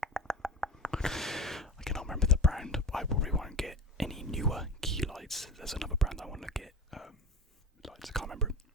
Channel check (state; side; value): normal; both; correlation 0.30